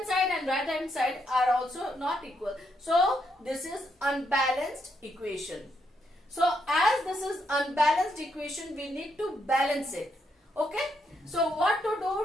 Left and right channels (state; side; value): normal; both; correlation 0.78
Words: side and right hand side are also not equal. So this is unbalanced equation. So as this is unbalanced equation, we need to balance it. Okay. So what to